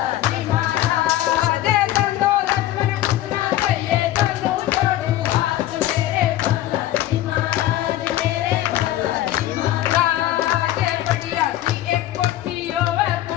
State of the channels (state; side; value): quieter; right; 14.0 dB